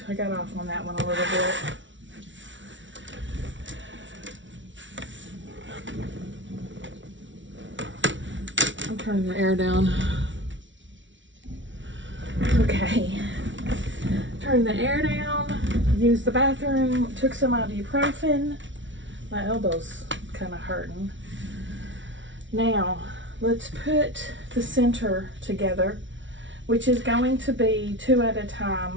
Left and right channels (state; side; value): late; left; 0.55 ms